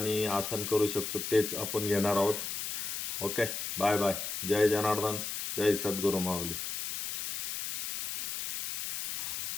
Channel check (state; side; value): noise; left; hiss, 4 dB below the sound